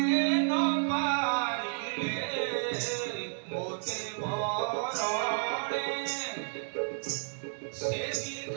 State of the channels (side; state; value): left; silent; digital silence